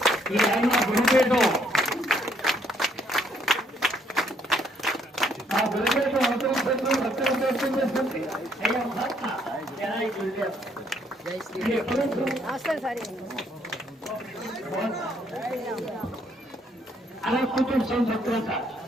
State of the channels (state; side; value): normal; both; correlation 0.69